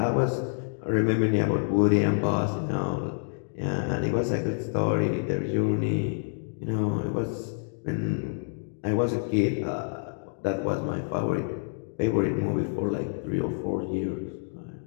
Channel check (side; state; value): right; silent; digital silence